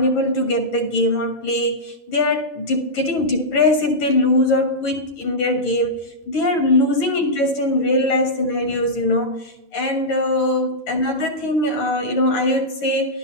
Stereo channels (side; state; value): right; late; 11 ms